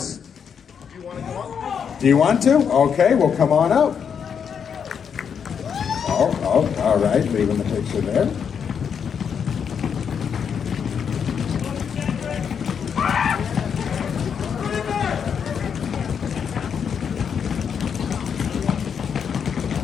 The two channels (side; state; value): right; quieter; 7.2 dB